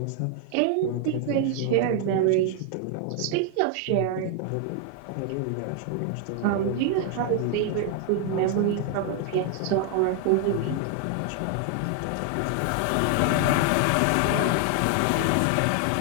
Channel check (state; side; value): different; both; correlation 0.00